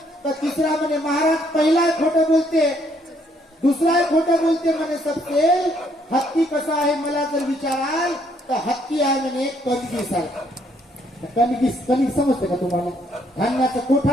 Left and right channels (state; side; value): normal; both; correlation 0.69